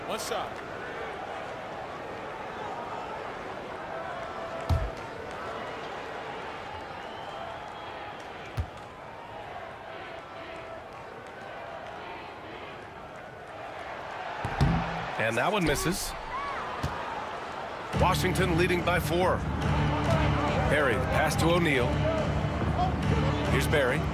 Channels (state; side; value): identical; both; correlation 1.00